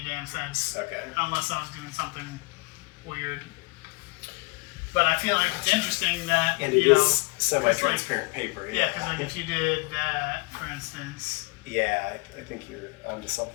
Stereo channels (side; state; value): right; quieter; 31.6 dB